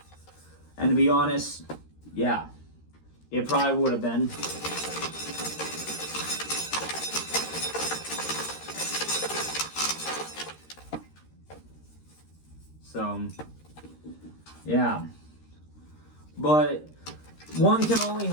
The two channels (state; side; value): late; right; 13 ms